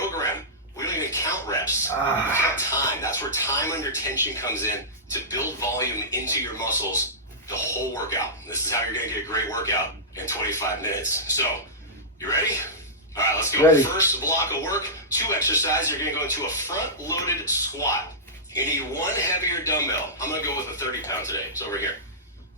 we don't even count reps. We count time. That's where time under tension comes in to build volume into your muscles the whole workout. This is how you're going to get a great workout in 25 minutes. So, you ready? All right, let's go. Ready. First block of work, 2 exercises. You're going to go into a front-loaded squat. You need 1 heavier dumbbell. I'm going to go with a 30-pound today. It's over here.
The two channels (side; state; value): both; normal; correlation -0.15